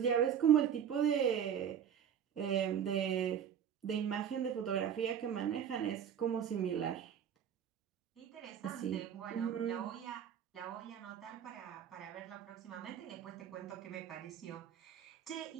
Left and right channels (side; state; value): left; quieter; 8.7 dB